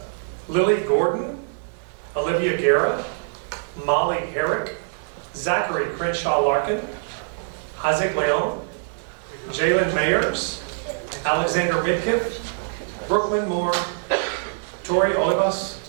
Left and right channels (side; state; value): left; silent; 63 dB below the other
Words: Lily Gordon, Olivia Guerra, Molly Herrick, Zachary Crenshaw Larkin, Isaac Leon, Jalen Mayers, Alexander Midkiff, Brooklyn Moore, Tori Olivas,